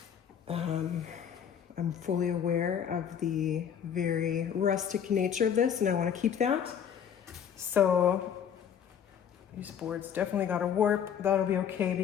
I'm fully aware of the very rustic nature of this, and I want to keep that. So these boards definitely got a warp. That'll be okay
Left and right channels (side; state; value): right; quieter; 8.4 dB